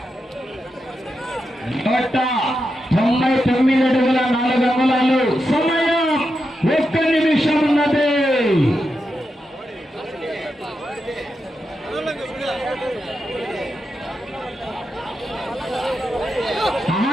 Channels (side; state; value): both; normal; correlation 0.87